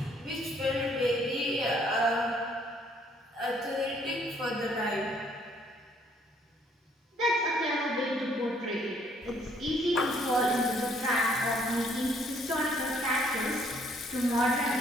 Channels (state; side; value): normal; both; correlation 0.65